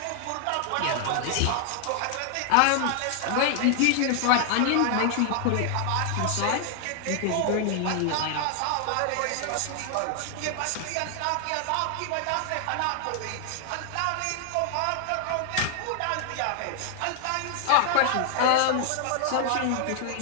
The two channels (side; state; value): both; different; correlation 0.00